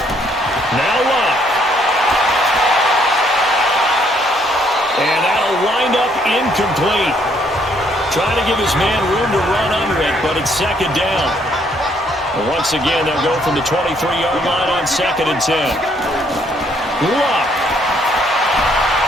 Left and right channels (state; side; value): normal; both; correlation 0.68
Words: Now Luck. And that'll wind up incomplete. Trying to give his man room to run under it, but it's 2nd down. And once again, they'll go from the 23-yard line on 2nd and 10. Luck.